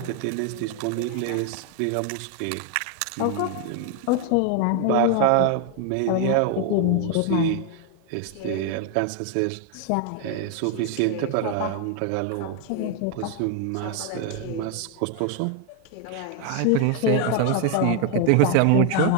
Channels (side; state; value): both; different; correlation 0.01